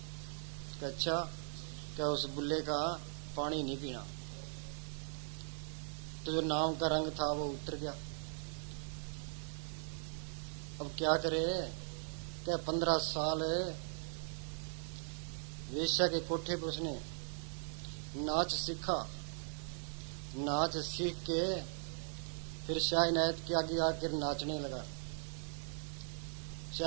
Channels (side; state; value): left; silent; 51 dB below the other